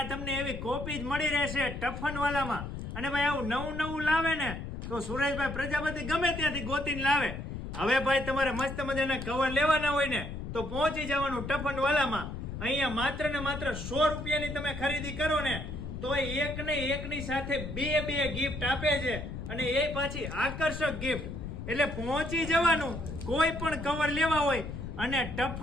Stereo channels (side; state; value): left; noise; rumble, 7 dB below the sound